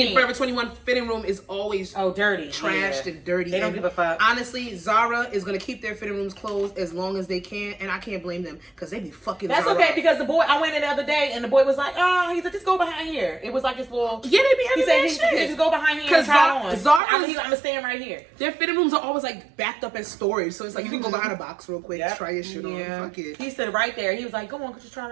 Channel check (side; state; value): left; drops out; at 17.0 s